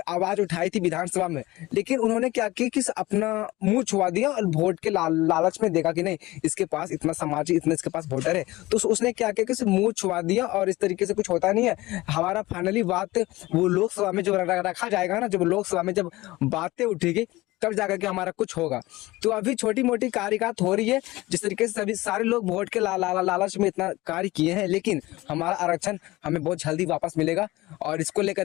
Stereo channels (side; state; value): right; quieter; 19.3 dB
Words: उठाई थी विधानसभा में, लेकिन उन्होंने क्या किया कि अपना मुंह छुआ दिया और वोट के लालच में देखा कि नहीं इसके पास इतना समाज, इतना इसके पास वोटर है, तो उसने क्या किया कि मुंह छुआ दिया। और इस तरीके से कुछ होता नहीं है। हमारा फाइनली बात वो लोकसभा में जब रखा जाएगा ना, जब लोकसभा में जब बातें उठेगी तब जाकर के हमारा कुछ होगा। तो अभी छोटी मोटी कार्यकात हो रही है, जिस तरीके से सभी सारे लोग वोट के लालच में इतना कार्य किए हैं, लेकिन हमारा आरक्षण हमें बहुत जल्दी वापस मिलेगा। और इसको